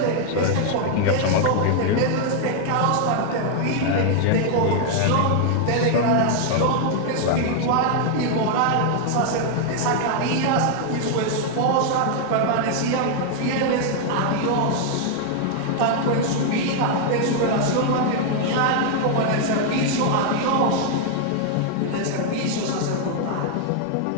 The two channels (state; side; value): different; both; correlation 0.00